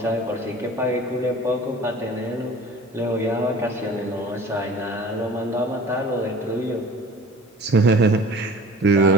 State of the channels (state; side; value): normal; both; correlation 0.43